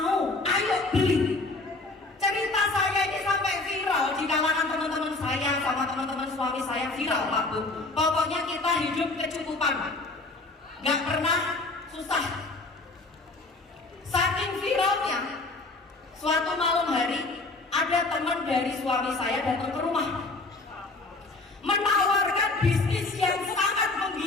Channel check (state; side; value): quieter; right; 3.3 dB